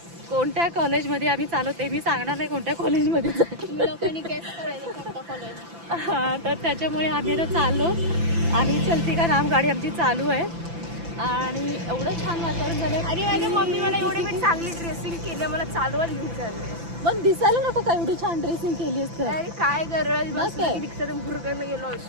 कोणत्या कॉलेजमध्ये आम्ही चाललो ते मी सांगणार नाही कोणत्या कॉलेजमध्ये हां, तर त्याच्यामुळे आम्ही आता चाललो आणि चलती का नाम गाडी आमची चालू आहे आणि एवढं छान वातावरण झालं. आणि माझ्या मम्मी मला एवढी मी चांगली ड्रेसिंग केली, मला चालवत घेऊन चालले. पण दिसायला नको का एवढी छान ड्रेसिंग केली असतं. अरे काय गरज, मग काय? रिक्षातून भुरकन गेलो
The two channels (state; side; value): late; left; 5.9 ms